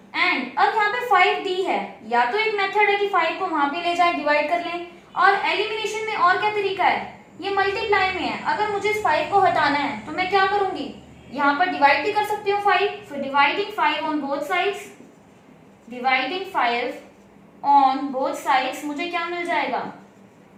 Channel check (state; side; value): identical; both; correlation 1.00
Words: एंड अब यहाँ पे 5d है, या तो एक मेथड है कि 5 को वहां पे ले जाए डिवाइड कर लें, और एलिमिनेशन में और क्या तरीका है, ये मल्टीप्लाई में है, अगर मुझे इस 5 को हटाना है तो मैं क्या करूंगी यहाँ पर डिवाइड भी कर सकती हूँ 5, so dividing 5 on both sides, dividing 5 on both sides मुझे क्या मिल जाएगा,